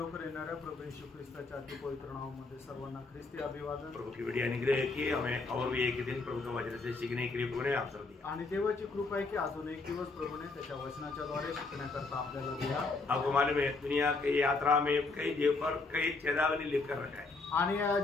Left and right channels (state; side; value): quieter; right; 3.7 dB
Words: येणाऱ्या प्रभू येशू ख्रिस्ताच्या अतिपवित्र नावामध्ये सर्वांना ख्रिस्ती अभिवादन। प्रभु की बड़ी अनुग्रह है कि हमें और भी एक दिन प्रभु का वचन से सीखने के लिए प्रभु ने अवसर दिया आणि देवाची कृपा आहे की अजून एक दिवस प्रभूने त्याच्या वचनाच्या द्वारे शिकण्याकरता आपल्याला दिला। आपको मालूम है दुनिया की यात्रा में कई जगह पर कई चेतावनी लिखकर रखा है आणि या